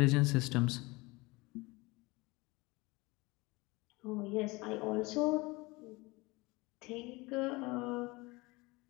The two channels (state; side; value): quieter; right; 23.5 dB